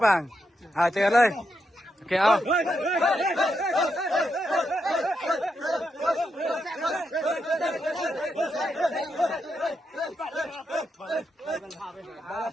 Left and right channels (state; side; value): normal; both; correlation 0.83